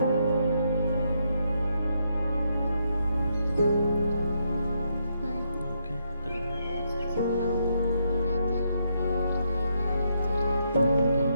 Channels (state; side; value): inverted; both; correlation -0.77